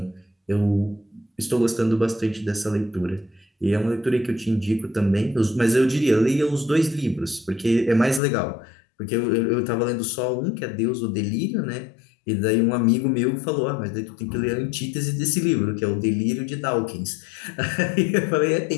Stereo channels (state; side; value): drops out; right; at 8.2 s